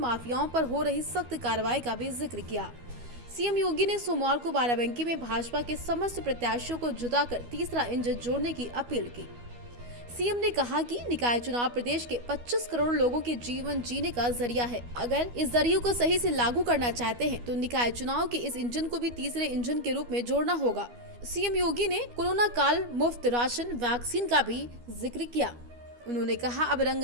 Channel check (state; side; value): late; left; 12 ms